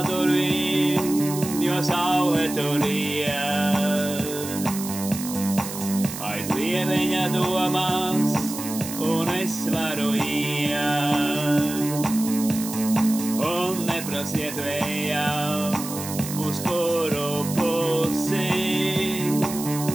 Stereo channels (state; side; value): noise; right; hiss, 9 dB below the sound